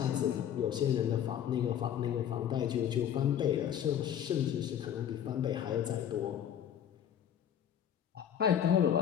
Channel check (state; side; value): quieter; right; 9.6 dB